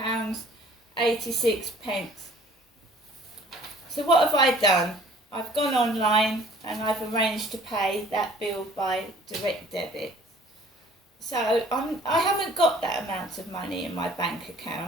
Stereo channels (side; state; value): both; normal; correlation 0.53